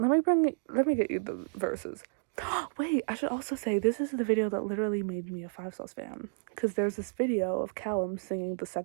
me get you the verses. Wait, I should also say this is the video that literally made me a 5 Sauce fan. Because there's this video of Callum singing the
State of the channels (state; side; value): silent; left; digital silence